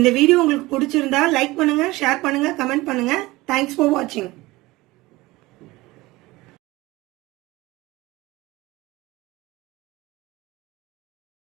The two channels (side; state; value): left; quieter; 20.1 dB